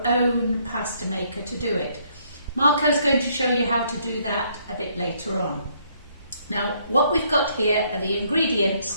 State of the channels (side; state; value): both; inverted; correlation -0.68